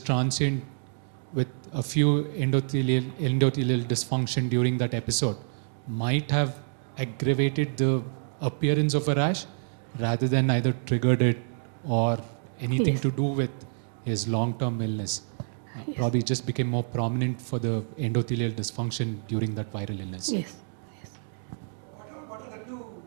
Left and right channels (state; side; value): silent; left; digital silence